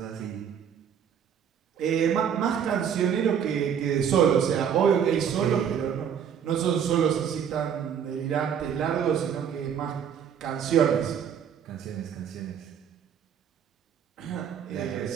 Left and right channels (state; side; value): quieter; left; 8.2 dB